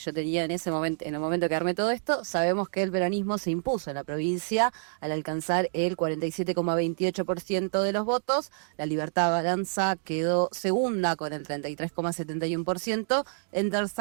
tenía en ese momento, en el momento que armé todo esto, sabemos que el peronismo se impuso en la provincia al alcanzar el 47,28% de los votos. La Libertad Avanza quedó segunda con el 33,71%. En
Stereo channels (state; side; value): silent; left; digital silence